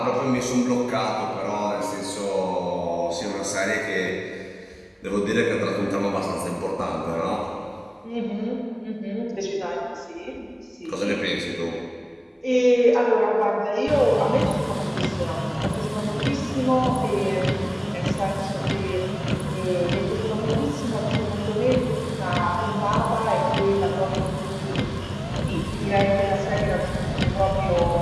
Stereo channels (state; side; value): identical; both; correlation 1.00